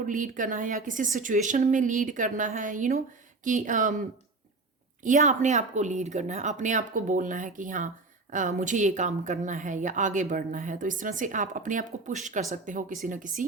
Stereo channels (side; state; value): left; quieter; 3.6 dB